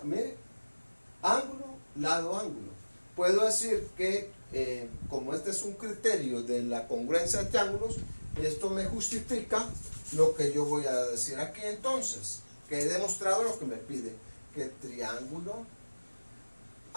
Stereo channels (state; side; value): inverted; both; correlation -1.00